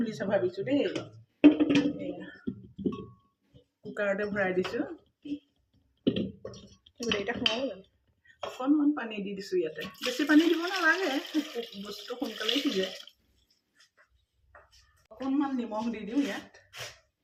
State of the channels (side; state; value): both; identical; correlation 1.00